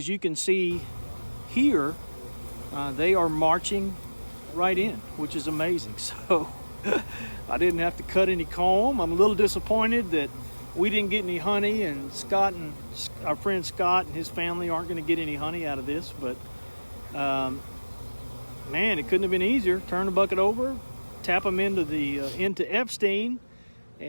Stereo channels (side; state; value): both; inverted; correlation -1.00